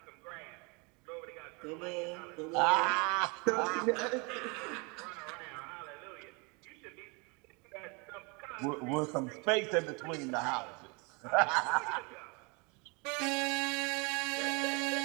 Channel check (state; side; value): quieter; left; 30.4 dB